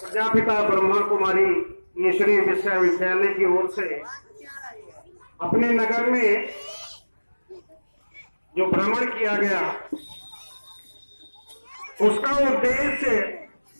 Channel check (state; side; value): inverted; both; correlation -1.00